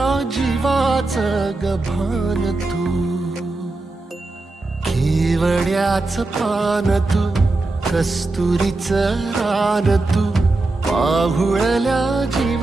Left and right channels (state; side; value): quieter; left; 3.2 dB